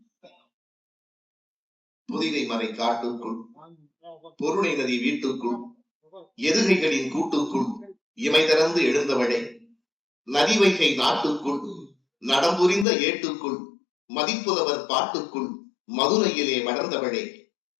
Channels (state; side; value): drops out; right; at 12.9 s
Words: புதிகை மறை காட்டுக்குள், பொருணை நதி வீட்டுக்குள், எதுகைகளின் கூட்டுக்குள் இமை திறந்து எழுந்தவளே, நதி வைகை நாட்டுக்குள், நடம்புரிந்த ஏட்டுக்குள், மதிப்புதவர் பாட்டுக்குள், மதுரையிலே வளர்ந்தவளே,